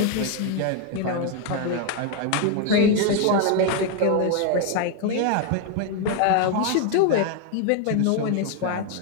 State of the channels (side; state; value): both; different; correlation 0.01